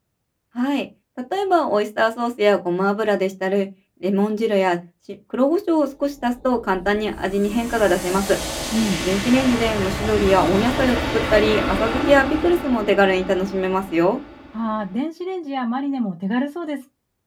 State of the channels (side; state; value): both; identical; correlation 1.00